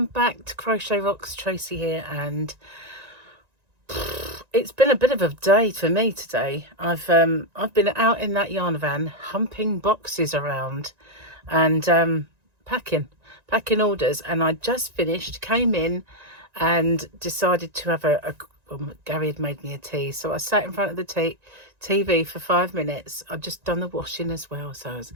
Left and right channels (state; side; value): late; left; 1.9 ms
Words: back to Crochet Rocks. Tracy here, and it's been a bit of a day for me today. I've been out in that yarn van humping boxes around and packing orders, and I just finished, came in and decided to have Gary had made me a tea, so I sat in front of the TV for 5 minutes. I'd just done the washing as well, so